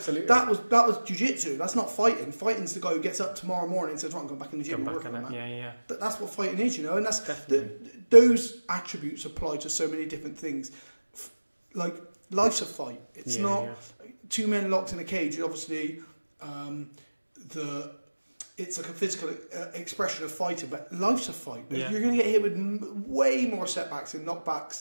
was jiu-jitsu. That's not fighting. Fighting's the guy who gets up tomorrow morning and says, "Right, I'm going back in the gym and work on that." Yeah. But that's what fighting is, you know, and that's those attributes apply to so many different things. Like life's a fight. It's not two men locked in a cage. Obviously, it's like a physical expression of fighting, but life's a fight. Yeah. You're going to get hit with way more setbacks and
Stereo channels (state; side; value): inverted; both; correlation -1.00